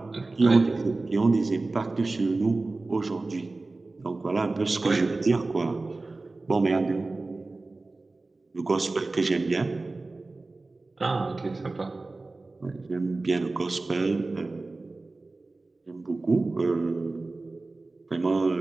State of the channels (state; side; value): quieter; left; 3.3 dB